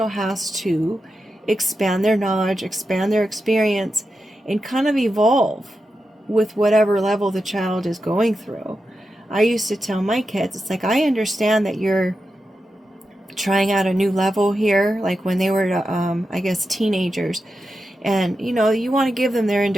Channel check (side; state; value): both; normal; correlation 0.89